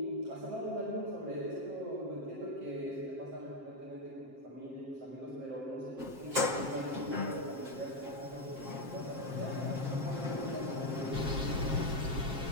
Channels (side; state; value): left; late; 7.5 ms